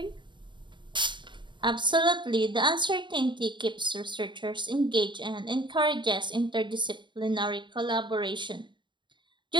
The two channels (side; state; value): left; late; 0.23 ms